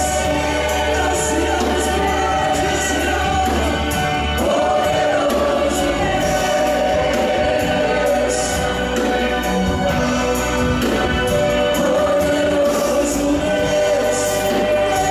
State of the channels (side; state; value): both; identical; correlation 1.00